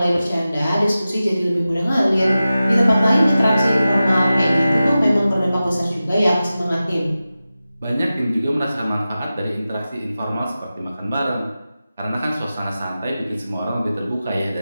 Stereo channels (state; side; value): inverted; both; correlation -0.94